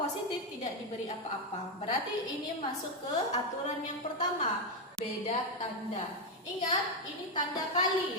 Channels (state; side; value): normal; both; correlation 0.06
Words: tidak diberi apa-apa. Berarti ini masuk ke aturan yang pertama, beda tanda. Ingat, ini tanda